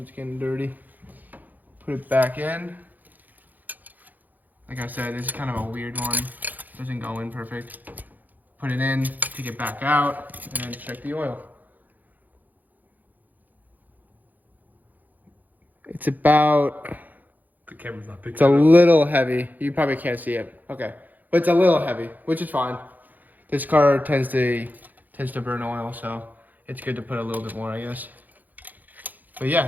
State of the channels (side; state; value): left; late; 0.083 ms